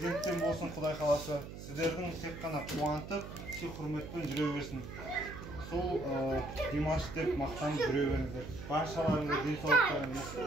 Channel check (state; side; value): noise; right; hum, 11 dB below the sound